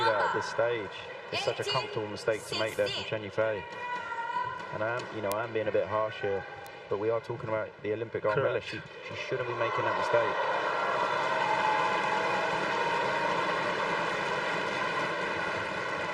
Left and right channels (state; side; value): identical; both; correlation 1.00